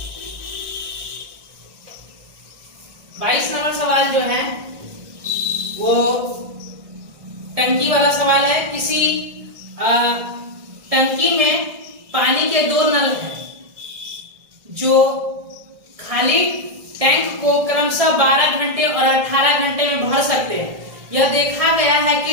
22 नंबर सवाल जो है वो टंकी वाला सवाल है। किसी टंकी में पानी के 2 नल हैं जो खाली टैंक को क्रमशः 12 घंटे और 18 घंटे में भर सकते हैं। यह देखा गया है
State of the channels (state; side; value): late; left; 1.6 ms